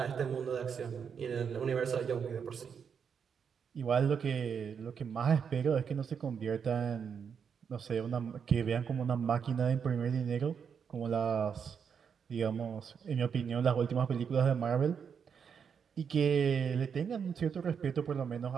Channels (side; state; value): left; quieter; 6.9 dB